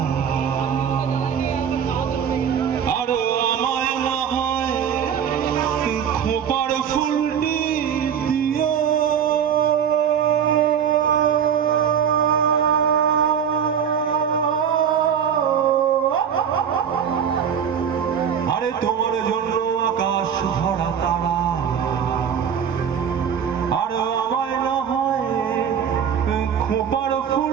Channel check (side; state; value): left; quieter; 8.0 dB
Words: আর আমায় না হয় খোপার ফুলটি দিও। আরে তোমার জন্য আকাশ ভরা তারা আর আমায় না হয় খোপার